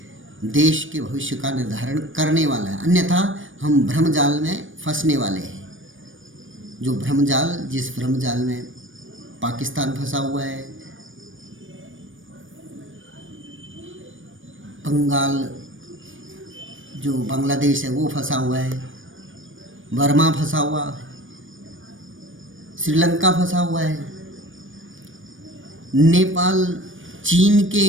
देश के भविष्य का निर्धारण करने वाला है। अन्यथा हम भ्रमजाल में फंसने वाले हैं। जो भ्रमजाल, जिस भ्रमजाल में पाकिस्तान फंसा हुआ है, बंगाल जो बांग्लादेश है वो फंसा हुआ है, बर्मा फंसा हुआ है, श्रीलंका फंसा हुआ है, नेपाल चीन के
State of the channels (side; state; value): left; late; 0.57 ms